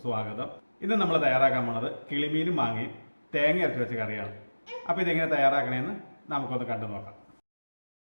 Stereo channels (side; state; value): both; inverted; correlation -1.00